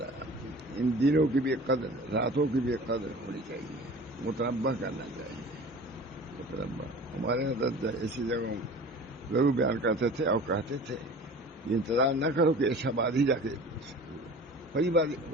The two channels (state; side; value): normal; both; correlation 0.41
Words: ان دنوں کی بھی قدر، راتوں کی بھی قدر ہونی چاہیے، متنبع کرنا چاہیے، متنبع۔ ہمارے حضرت ایسی جگہوں ضرور بیان کرتے تھے اور کہتے تھے یہ انتظار نہ کرو کہ ایسا بعد ہی جا کے پہلی بار